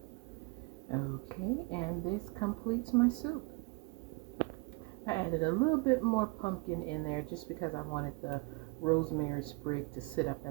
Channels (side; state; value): left; quieter; 27.9 dB